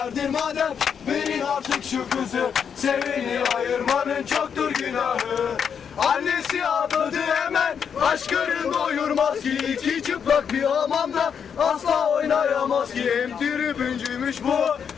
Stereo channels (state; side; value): quieter; right; 7.3 dB